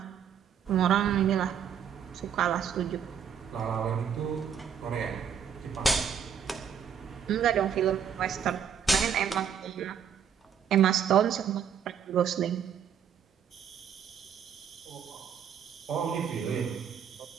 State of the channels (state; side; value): quieter; left; 8.0 dB